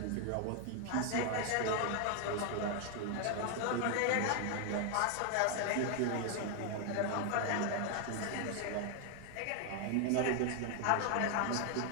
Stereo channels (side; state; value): both; different; correlation 0.00